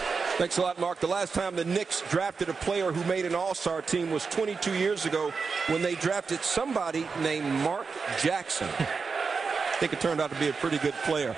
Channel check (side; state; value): left; quieter; 5.0 dB